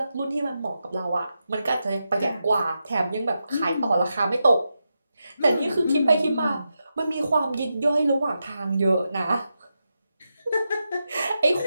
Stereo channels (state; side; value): inverted; both; correlation -0.88